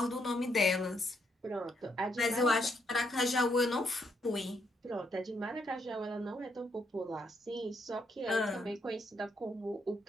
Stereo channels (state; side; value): normal; both; correlation 0.75